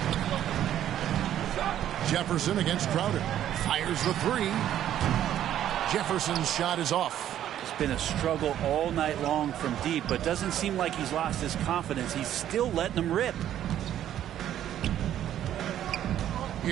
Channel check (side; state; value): left; quieter; 11.3 dB